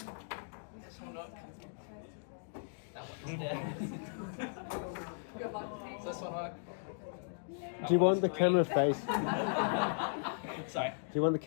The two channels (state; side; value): silent; right; digital silence